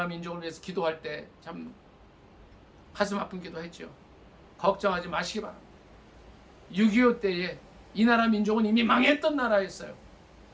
민족을 위해서 기도할 때 참 가슴 아픈 기도했죠. 걱정하지 마시기 바랍니다. 6.25 때에 이 나라 민족은 이미 망했던 나라였어요.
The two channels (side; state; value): both; identical; correlation 1.00